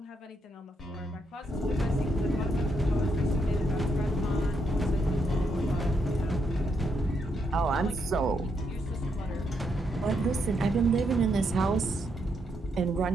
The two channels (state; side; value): normal; both; correlation 0.78